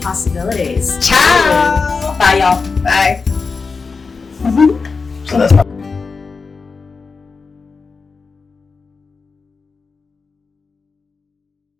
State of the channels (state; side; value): quieter; right; 4.6 dB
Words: Possibilities. Ciao! Bye, y'all. Bye. So that's